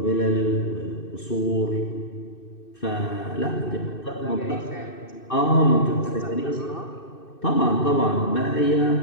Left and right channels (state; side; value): late; right; 2.6 ms